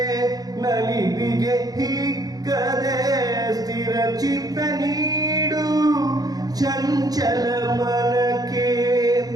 ನಲಿವಿಗೆ ಹಿಕ್ಕದೆ ಸ್ಥಿರ ಚಿತ್ತ ನೀಡು ಚಂಚಲ ಮಲಕ್ಕೆ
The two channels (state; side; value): late; left; 0.18 ms